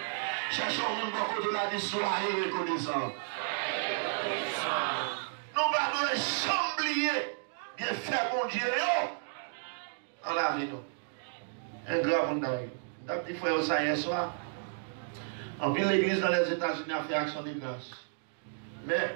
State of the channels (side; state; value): left; silent; digital silence